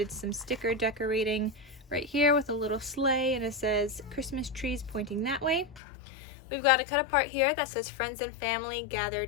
some sticker decorating right here with a little sleigh, and it says Christmas trees pointing that way. We've got a cut apart here that says "Friends and family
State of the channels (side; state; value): right; drops out; at 5.8 s